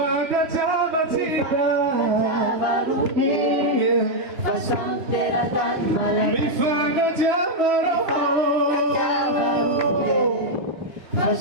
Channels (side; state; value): left; late; 3.0 ms